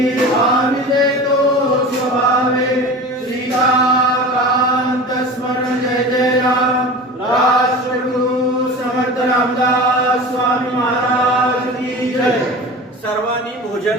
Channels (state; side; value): normal; both; correlation 0.34